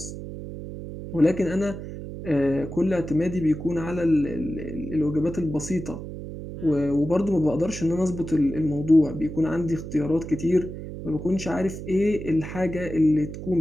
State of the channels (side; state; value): right; noise; hum, 9 dB below the sound